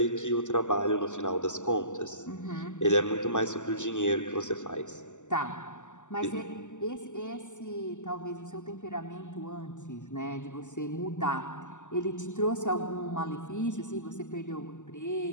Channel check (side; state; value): right; late; 0.85 ms